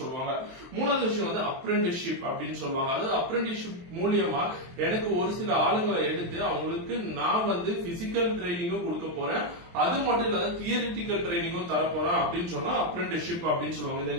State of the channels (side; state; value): left; late; 23 ms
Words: சொல்லுவாங்க. மூணாவது விஷயம் வந்து அப்ரெண்டிஸ்ஷிப் அப்படின்னு சொல்லுவாங்க. அதாவது அப்ரெண்டிஸ்ஷிப் மூலியமா எனக்கு ஒரு சில ஆளுங்களை எடுத்து அவங்களுக்கு நான் வந்து பிசிக்கல் ட்ரைனிங்கும் கொடுக்க போறேன், அது மட்டும் இல்லாத தியரிட்டிக்கல் ட்ரைனிங்கும் தர போறேன் அப்படின்னு சொன்னா அப்ரெண்டிஸ்ஷிப் அப்படின்னு சொல்லுவாங்க. இந்த